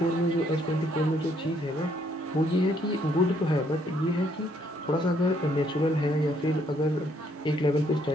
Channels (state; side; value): normal; both; correlation 0.69